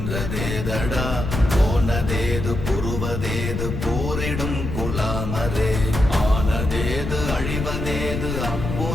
போனதேது புருவதேது போரிடும் குலாமரே, ஆனதேது அழிவதேது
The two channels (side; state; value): left; noise; rumble, 4 dB below the sound